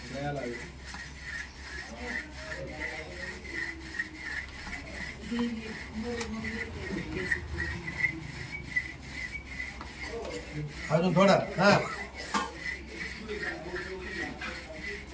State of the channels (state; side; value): identical; both; correlation 1.00